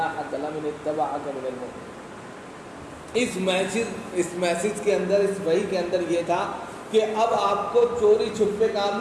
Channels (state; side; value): identical; both; correlation 1.00